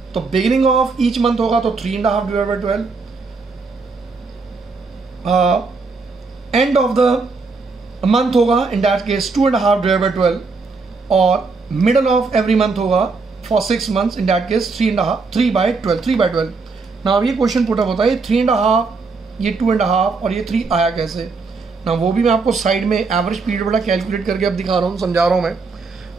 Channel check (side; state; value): left; quieter; 4.3 dB